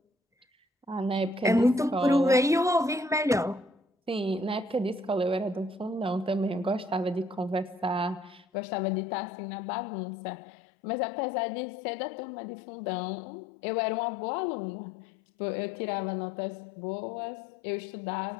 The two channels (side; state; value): right; drops out; at 8.5 s